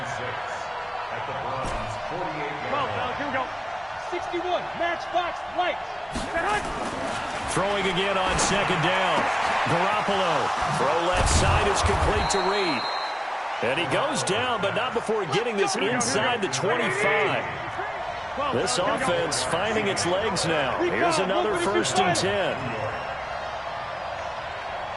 6 at the Browns 48. 12, now here we go. 61, matchbox lights. Throwing again on second down. Garoppolo. Throw left side is complete to Reed. And he goes down, but not before getting this inside the 25. This offense finding its legs now. Here's another 1st and 10.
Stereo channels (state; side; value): identical; both; correlation 1.00